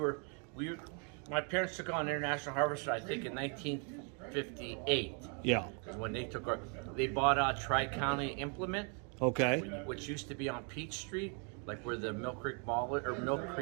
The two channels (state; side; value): quieter; left; 38.2 dB